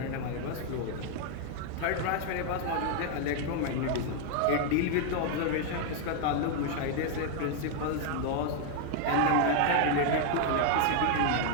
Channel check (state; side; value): different; both; correlation 0.00